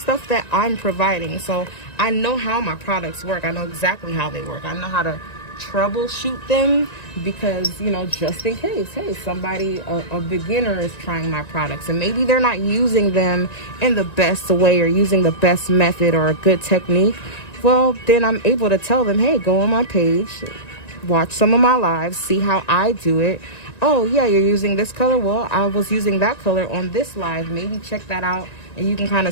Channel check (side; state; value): right; late; 1.9 ms